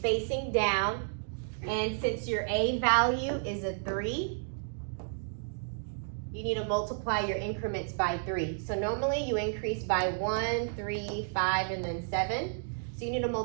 down, and since your A value is a 3, you need to multiply your increments by 3. So normally you increase by 1, 3, 5, and then 7. So you need to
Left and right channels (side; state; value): left; silent; digital silence